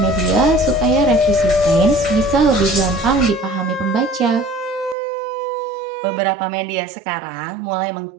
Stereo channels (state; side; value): drops out; left; at 5.0 s